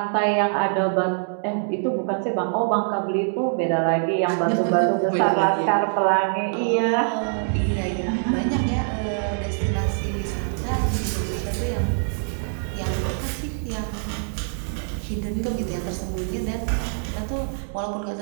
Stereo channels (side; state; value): left; silent; digital silence